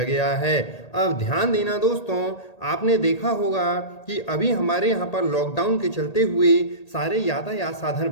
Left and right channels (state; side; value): late; right; 1.8 ms